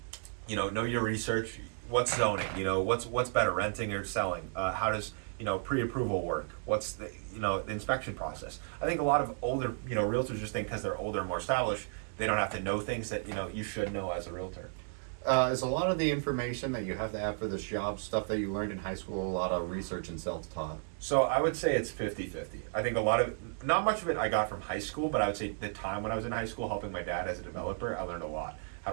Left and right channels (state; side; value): silent; left; digital silence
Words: know your research. What's zoning? What's better, renting or selling? How does pre-approval work? What's the inspection process? I think a lot of older realtors just think because they're older and more established, they don't have to know things that you should know as a realtor. Is a lot of the information that you have to have for this job stuff that you learned in high school a lot of research and self-taught? So I would say it's 50-50. I think not much of it I got from high school, but I would say the time when I was in high school helping my dad as a developer, I learned a lot. How